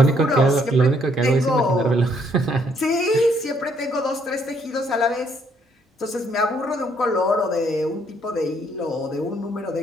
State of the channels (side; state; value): both; normal; correlation 0.69